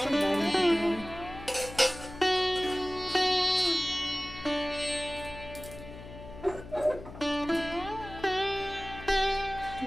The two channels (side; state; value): left; noise; hum, 14 dB below the sound